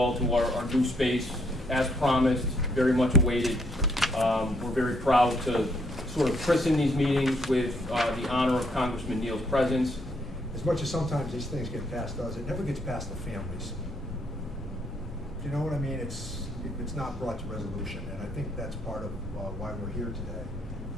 to our new space. As promised, very much awaited. We're very proud to sort of christen these meetings with the honor of Congressman Neal's presence. As much as sometimes these things get past us, it never gets past the families. Do you know what I mean? It's not brought to resolution, and I think that's part of why we're here today.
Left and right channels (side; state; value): both; normal; correlation 0.71